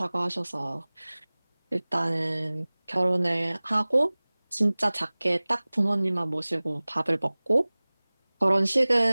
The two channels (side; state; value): both; inverted; correlation -1.00